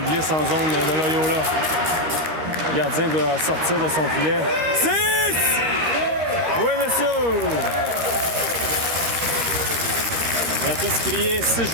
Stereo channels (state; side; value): late; left; 13 ms